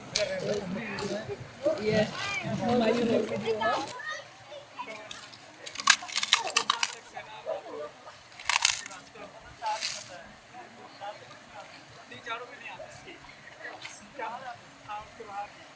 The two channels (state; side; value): identical; both; correlation 1.00